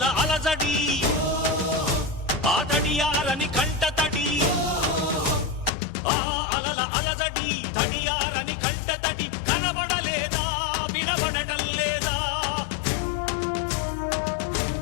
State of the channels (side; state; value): right; drops out; at 5.7 s